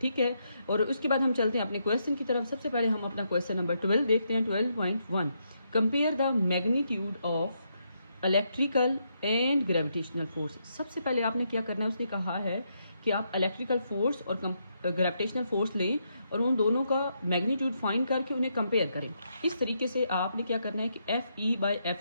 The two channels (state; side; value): inverted; both; correlation -0.79